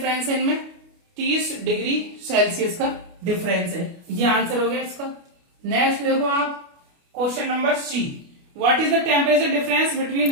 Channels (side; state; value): left; late; 29 ms